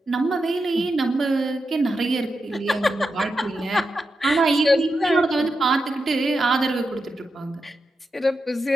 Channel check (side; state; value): both; normal; correlation 0.88